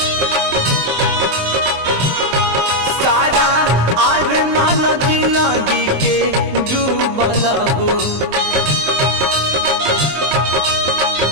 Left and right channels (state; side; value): late; left; 23 ms